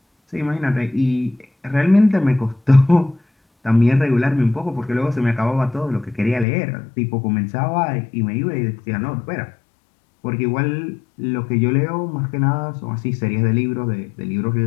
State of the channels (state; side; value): drops out; right; at 6.5 s